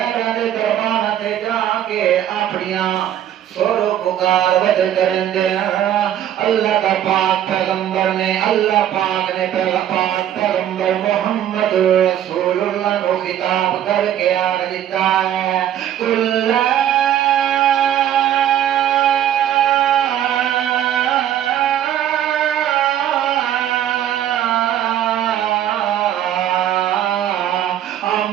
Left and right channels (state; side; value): quieter; left; 11.0 dB